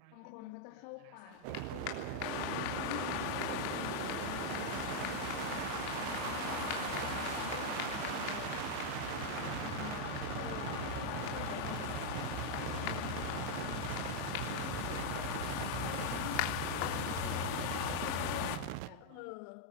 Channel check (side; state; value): both; different; correlation 0.00